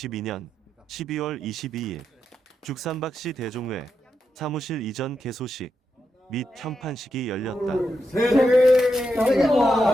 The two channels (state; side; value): normal; both; correlation 0.85